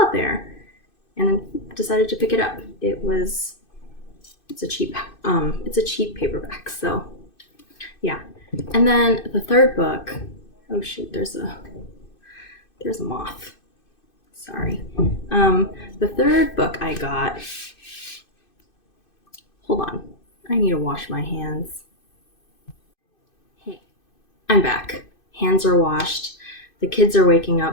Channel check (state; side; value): late; right; 2.6 ms